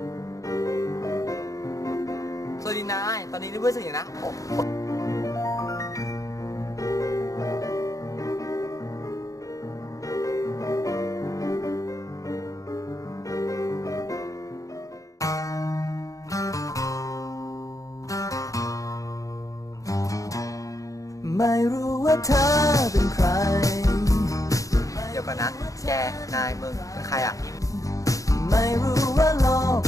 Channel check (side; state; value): right; late; 0.16 ms